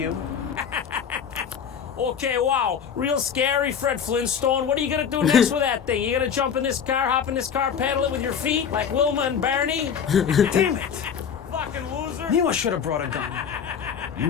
Okay, wow, real scary, Fred Flintstone. What are you gonna do next with that thing? You gonna jump in this car, hop in this car, paddle it with your feet like Wilma and Barney? Damn it! Fucking loser. Knew I should have brought a gun.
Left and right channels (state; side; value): quieter; right; 7.5 dB